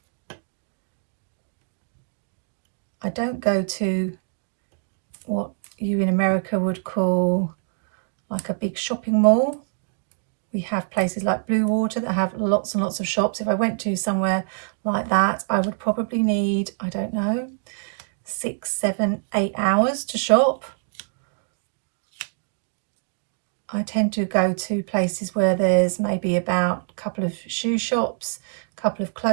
I don't go to what you in America would call like a big shopping mall. We have places like Blue Water that have lots and lots of shops. If I went to somewhere like that, I would probably need, I don't know, 6, 7, 8 hours to shop. I tend to go to places where there's maybe about a couple of shoe shops, a couple of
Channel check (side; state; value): left; silent; digital silence